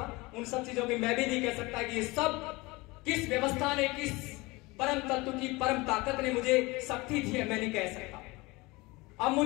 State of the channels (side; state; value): right; quieter; 23.2 dB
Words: उन सब चीजों की। मैं भी नहीं कह सकता कि ये सब किस व्यवस्था ने, किस परम तत्व की परम ताकत ने मुझे शक्ति दी है, मैं नहीं कह सकता। अब